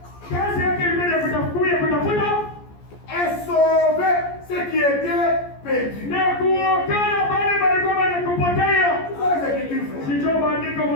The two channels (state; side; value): late; right; 14 ms